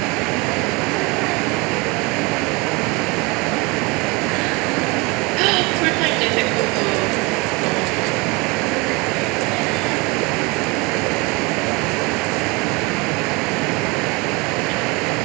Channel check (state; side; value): quieter; left; 26.6 dB